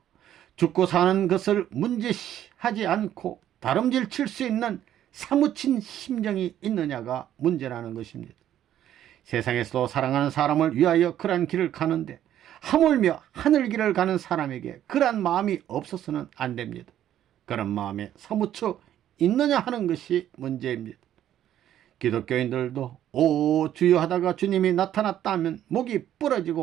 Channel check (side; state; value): left; quieter; 11.4 dB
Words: 죽고 사는 것을 문제시하지 않고 다름질 칠 수 있는 사무친 심정이 있느냐가 문제라는 것입니다. 세상에서도 사랑하는 사람을 위하여 그러한 길을 가는데 하물며 하늘길을 가는 사람에게 그러한 마음이 없어서는 안 됩니다. 그런 마음에 사무쳐 있느냐 하는 것이 문제입니다. 기독교인들도 오 주여 하다가 주님이 나타났다 하면 목이